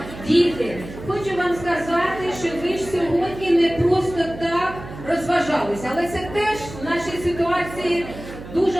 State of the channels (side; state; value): right; noise; hum, 14 dB below the sound